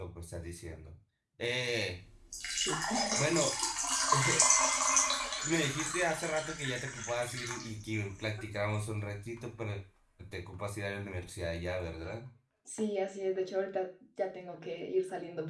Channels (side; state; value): both; identical; correlation 1.00